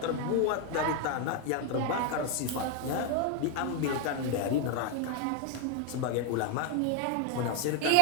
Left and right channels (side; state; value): both; different; correlation 0.01